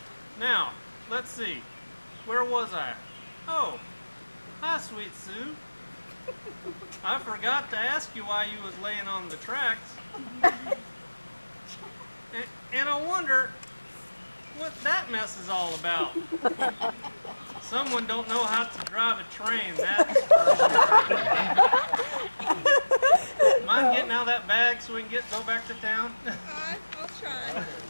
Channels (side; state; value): both; inverted; correlation -1.00